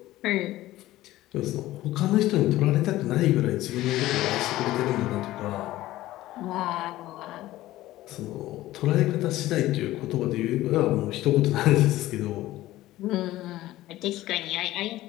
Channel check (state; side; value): quieter; right; 16.0 dB